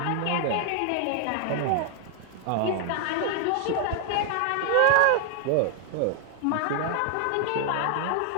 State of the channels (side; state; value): both; different; correlation 0.00